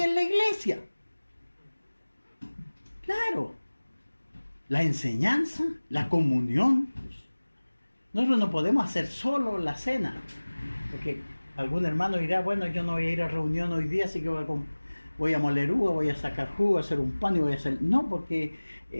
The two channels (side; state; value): both; inverted; correlation -1.00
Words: en la iglesia. Claro, la enseñanza, la comunión. Nosotros no podemos hacer solo la cena, porque algún hermano dirá: bueno, yo no voy a ir a reunión hoy día, así que voy a moler uva, voy a sacar jugo, a hacer un pan y voy a hacer... No, porque